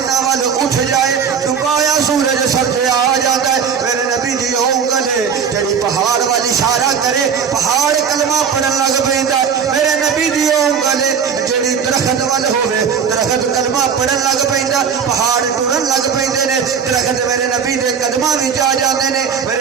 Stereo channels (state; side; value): quieter; left; 6.8 dB